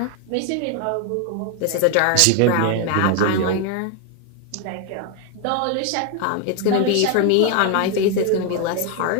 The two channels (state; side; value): different; both; correlation 0.01